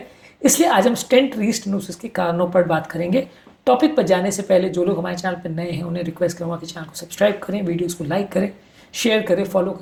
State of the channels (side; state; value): both; identical; correlation 1.00